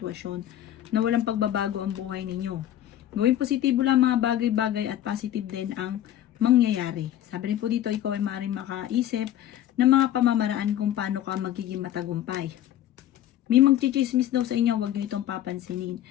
na walang pagbabago ang buhay ninyo. Gawin positibo lang mga bagay-bagay at positive din ang mangyayari. Sabi rin po dito, ikaw ay maaaring makaisip ng mga pamamaraan kung paano ka magiging matagumpay. May magchichismis daw sa inyo, huwag nyo itong papansinin.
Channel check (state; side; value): quieter; right; 12.0 dB